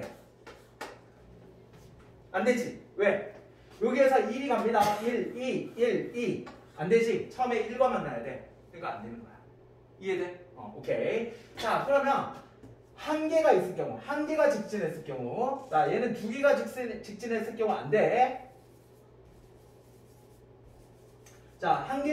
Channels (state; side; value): identical; both; correlation 1.00